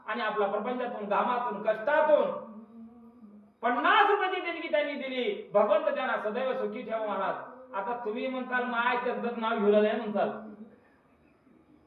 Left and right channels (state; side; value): identical; both; correlation 1.00